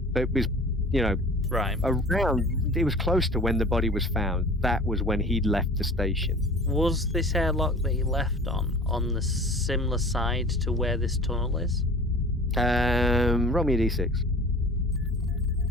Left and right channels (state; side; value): normal; both; correlation 0.42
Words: But it was, right around. It was close to when the body was found. That was when he'd left the station. Was this airlock that he left on the similar side to where this tunnel is? Roll me a d6.